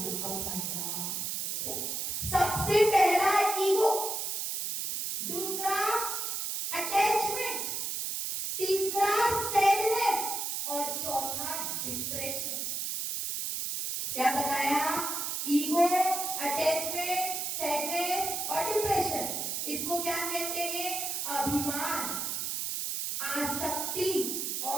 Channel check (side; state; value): right; noise; hiss, 2 dB below the sound